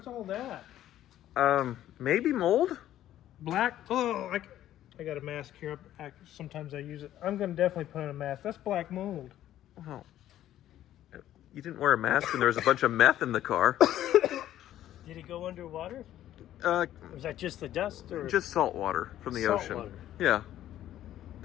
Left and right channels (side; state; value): right; quieter; 12.5 dB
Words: What's all that? Maybe mold? Black? Oh, I got a mask here. Sometimes I use it. I'm going to definitely put on a mask. That's black mold. Oh. You didn't wear a mask and there was a bunch of meth in the car. Did it go underwater? Or was that just the dust? Or just salt water from the ocean. Water. Yeah.